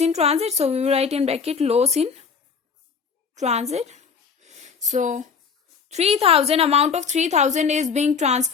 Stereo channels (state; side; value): quieter; right; 5.9 dB